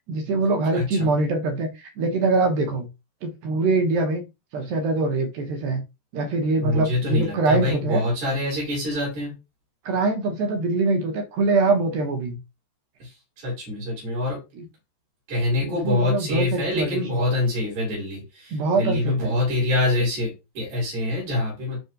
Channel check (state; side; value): late; left; 13 ms